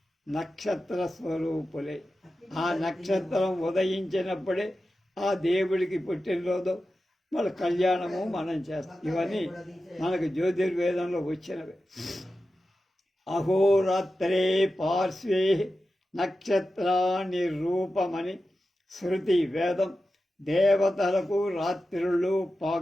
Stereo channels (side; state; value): both; normal; correlation 0.92